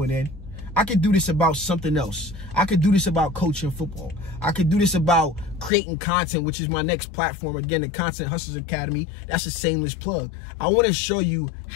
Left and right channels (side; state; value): right; drops out; at 5.7 s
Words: an end. I could do this about something else. I could do this about coaching football. I could do this about creating content, which is my next platform. Again, the Content Hustlers Academy. That's a shameless plug. I want to show you